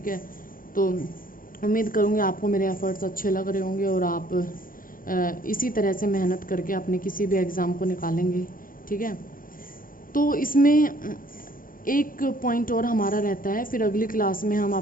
है, तो उम्मीद करूँगी आपको मेरे एफर्ट्स अच्छे लग रहे होंगे और आप इसी तरह से मेहनत करके अपने किसी भी एग्ज़ाम को निकालेंगे। ठीक है, तो इसमें एक पॉइंट और हमारा रहता है, फिर अगली क्लास में हम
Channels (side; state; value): right; late; 0.40 ms